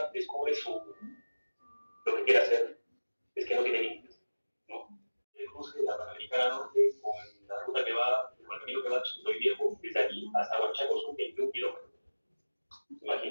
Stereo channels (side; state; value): both; inverted; correlation -1.00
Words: descubre lo que quiere hacer es que no tiene límites, ¿no? El cruce de la Panamericana Norte con la ruta que va, con el camino que va a Chicotoy Viejo, desde aquí hasta Huanchaco son 21 kilómetros,